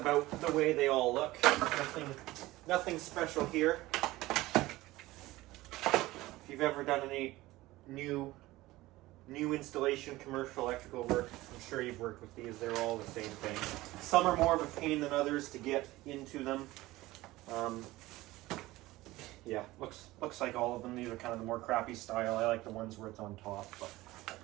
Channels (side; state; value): left; quieter; 18.3 dB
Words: the way they all look. Nothing special here. If you've ever done any new installation commercial electrical work, I'm sure you've worked with these. They're all the same thing. Some are more of a pain than others to get into them. Yeah, looks like all of them. These are kind of the more crappy style. I like the ones where it's on top, but